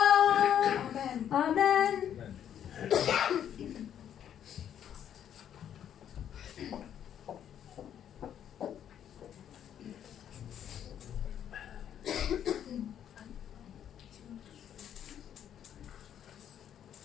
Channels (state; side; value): quieter; right; 9.7 dB